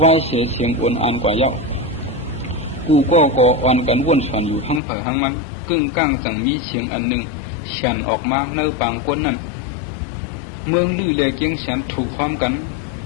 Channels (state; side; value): drops out; right; at 4.8 s